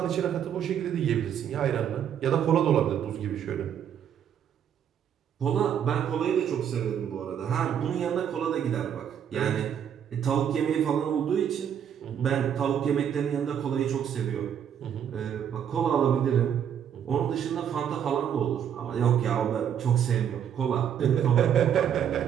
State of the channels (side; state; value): left; quieter; 8.9 dB